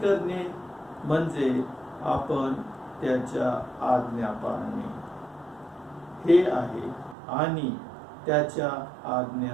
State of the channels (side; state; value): left; drops out; at 7.2 s